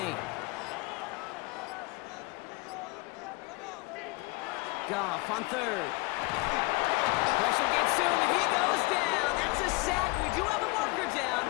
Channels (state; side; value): quieter; right; 25.2 dB